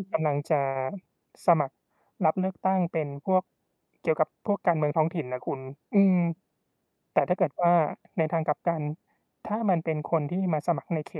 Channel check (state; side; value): identical; both; correlation 1.00